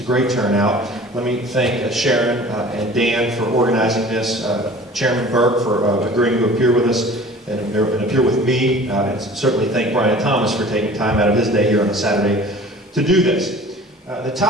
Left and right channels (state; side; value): normal; both; correlation 0.44